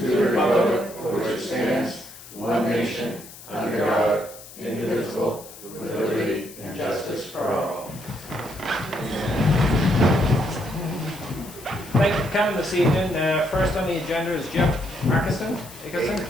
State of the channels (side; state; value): left; noise; hiss, 17 dB below the sound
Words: republic for which it stands, one nation, under God, indivisible, with liberty and justice for all. Thank you for coming this evening. First on the agenda is Jeff Ackerson.